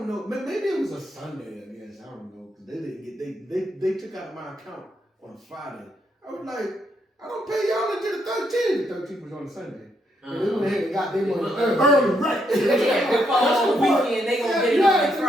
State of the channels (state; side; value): normal; both; correlation 0.76